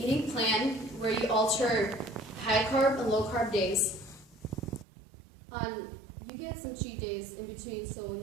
plan where you alter high carb and low carb days. You get some cheat days in between so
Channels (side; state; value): left; drops out; at 4.9 s